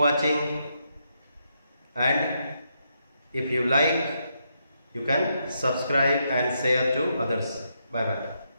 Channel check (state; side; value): inverted; both; correlation -0.80